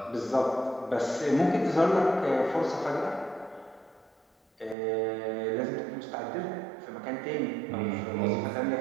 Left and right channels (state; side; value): drops out; left; at 4.8 s